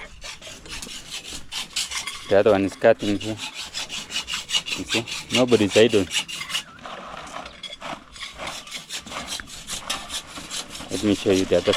The other one is cutting here. You see, nobody's idle. Let me show you the other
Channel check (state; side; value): identical; both; correlation 1.00